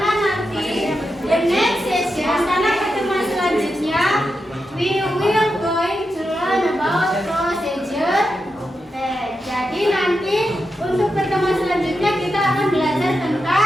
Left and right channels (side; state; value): both; normal; correlation 0.87